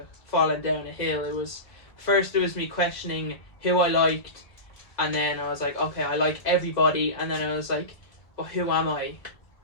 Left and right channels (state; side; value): late; right; 1.7 ms